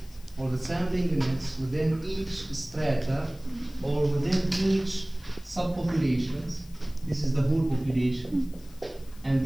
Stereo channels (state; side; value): noise; left; hiss, 25 dB below the sound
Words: or the sampling units within each strata or within each subpopulations, this is the whole population, and